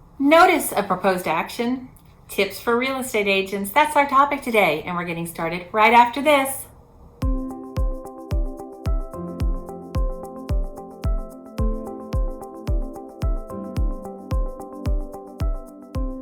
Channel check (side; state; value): both; identical; correlation 1.00